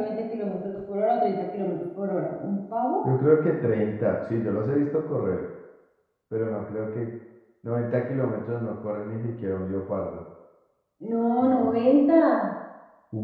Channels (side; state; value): both; identical; correlation 1.00